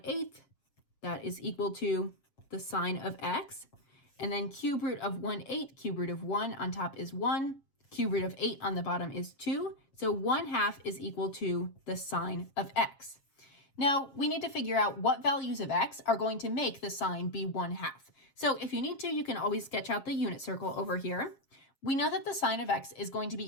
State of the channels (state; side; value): late; right; 7.4 ms